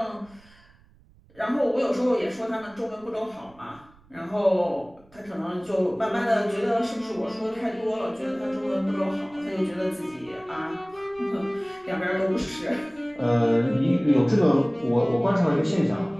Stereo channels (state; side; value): noise; right; rumble, 28 dB below the sound